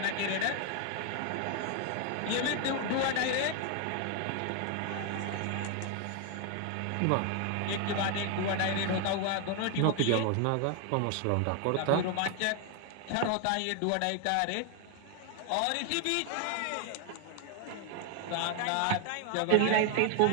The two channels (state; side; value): different; both; correlation 0.01